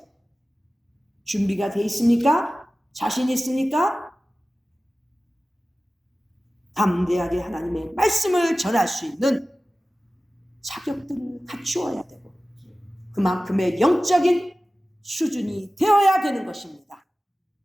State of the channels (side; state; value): both; normal; correlation 0.96